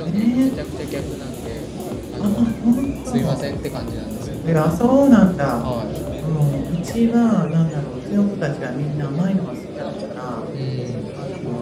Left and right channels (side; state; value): both; identical; correlation 1.00